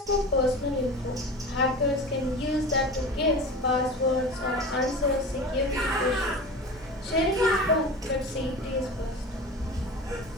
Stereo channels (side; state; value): both; normal; correlation 0.33